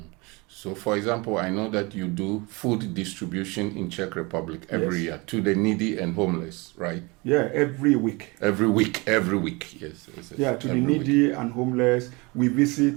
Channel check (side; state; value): left; quieter; 26.3 dB